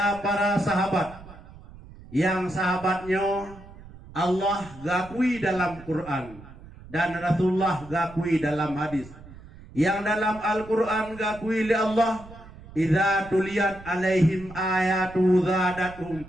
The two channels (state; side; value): noise; right; rumble, 18 dB below the sound